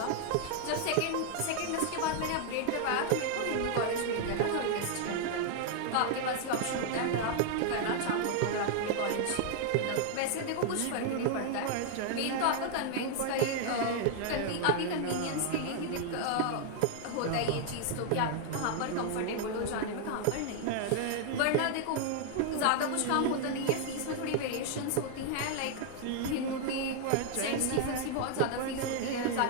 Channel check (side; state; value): both; different; correlation 0.00